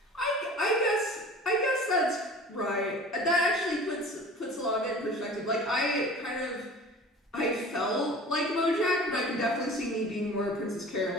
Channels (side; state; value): both; normal; correlation 0.42